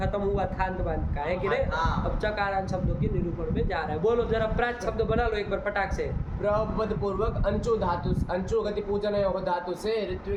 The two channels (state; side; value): identical; both; correlation 1.00